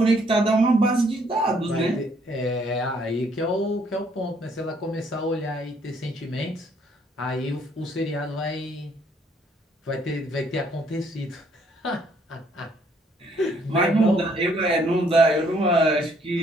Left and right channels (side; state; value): both; normal; correlation 0.66